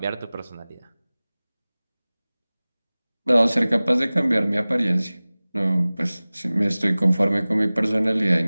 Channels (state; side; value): inverted; both; correlation -0.99